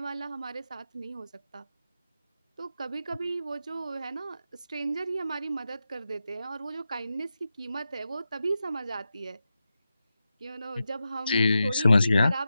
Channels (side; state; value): both; inverted; correlation -0.90